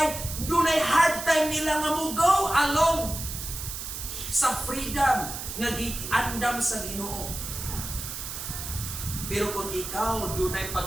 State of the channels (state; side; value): noise; right; hiss, 7 dB below the sound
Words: dunay hard time nila nga mo go along sa freedom nga giandam sa Ginoo. Pero kung ikaw dunay